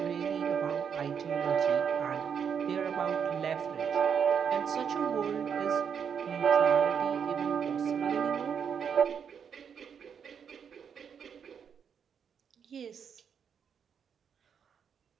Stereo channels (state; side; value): quieter; left; 7.3 dB